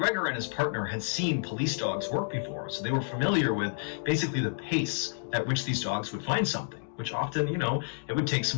and his partner had seen police dogs work before, so they were familiar with basically the pace at which these dogs would find something, which often, it would take some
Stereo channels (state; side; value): silent; right; digital silence